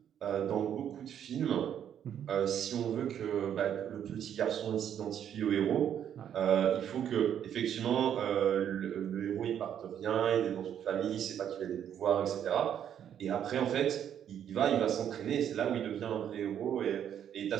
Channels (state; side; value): quieter; left; 9.5 dB